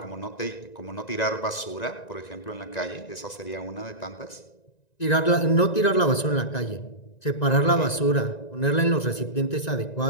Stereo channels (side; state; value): right; late; 1.9 ms